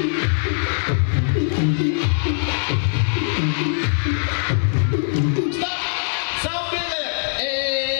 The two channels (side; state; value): right; silent; digital silence